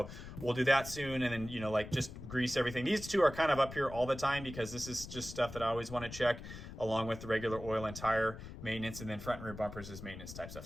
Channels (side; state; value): left; noise; rumble, 12 dB below the sound